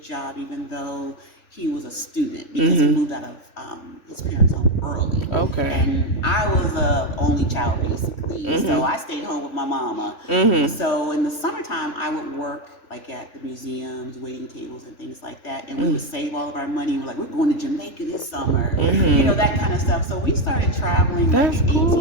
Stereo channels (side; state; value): right; late; 3.4 ms